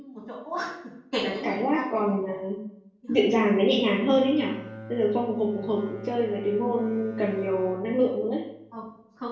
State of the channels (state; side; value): identical; both; correlation 1.00